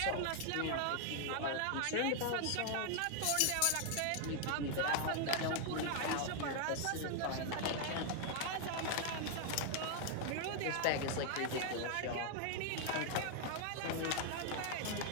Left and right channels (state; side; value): different; both; correlation 0.00